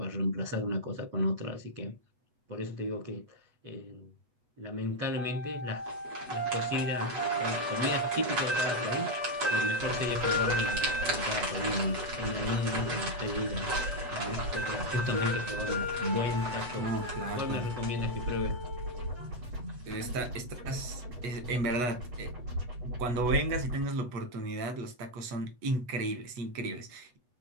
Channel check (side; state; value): left; late; 8.2 ms